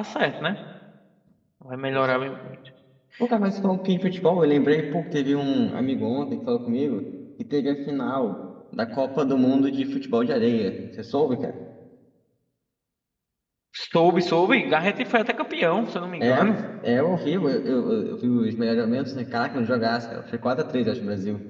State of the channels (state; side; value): identical; both; correlation 1.00